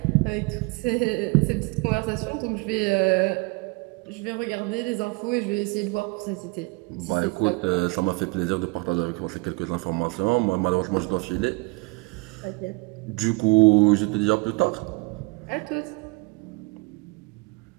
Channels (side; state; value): left; quieter; 27.5 dB